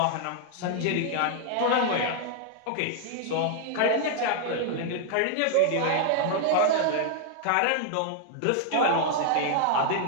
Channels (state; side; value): different; both; correlation 0.00